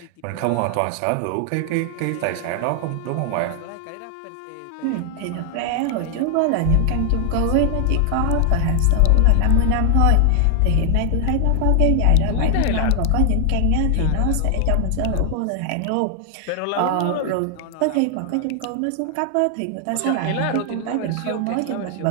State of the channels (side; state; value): both; different; correlation 0.00